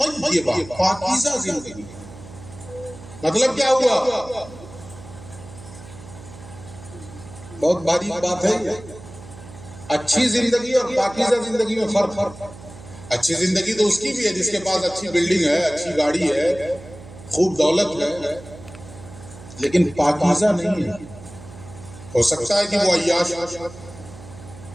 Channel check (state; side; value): noise; right; hum, 17 dB below the sound